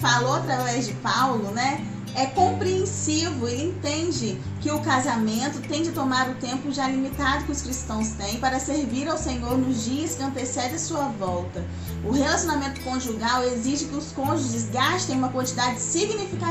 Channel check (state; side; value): identical; both; correlation 1.00